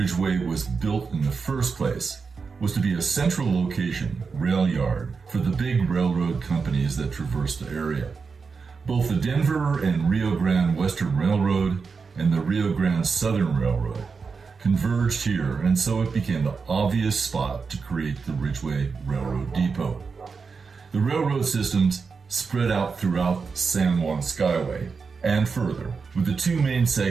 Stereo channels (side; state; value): left; quieter; 5.1 dB